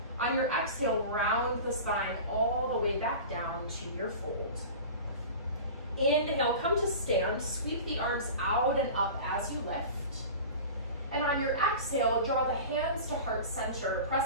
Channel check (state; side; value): inverted; both; correlation -0.35